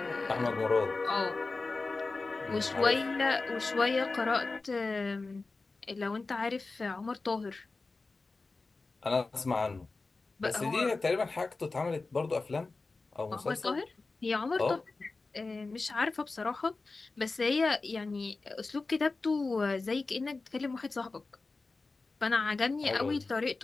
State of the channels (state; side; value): quieter; right; 3.7 dB